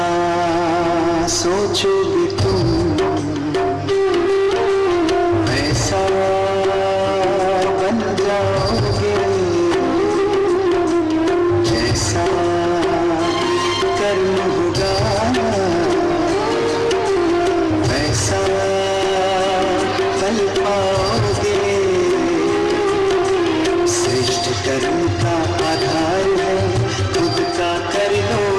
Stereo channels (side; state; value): both; identical; correlation 1.00